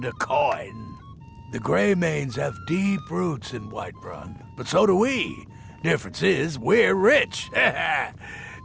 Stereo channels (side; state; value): both; identical; correlation 1.00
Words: to coin. The Greymanes have deep roots in Whiterun, but so do we. Difference is, we're rich. And